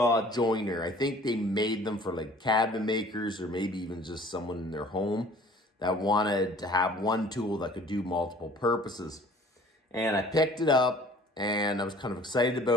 joiner. I think they made them for like cabinet makers or maybe even just someone in their home that wanted to have one tool that could do multiple purposes. And I picked it up and I was kind of excited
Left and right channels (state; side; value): normal; both; correlation 0.51